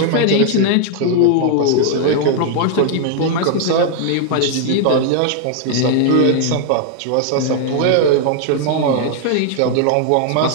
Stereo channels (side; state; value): both; different; correlation 0.00